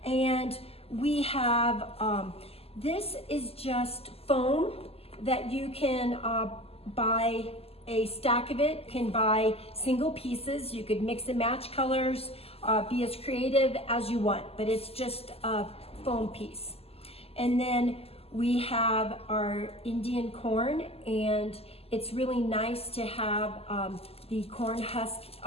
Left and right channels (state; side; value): late; right; 0.29 ms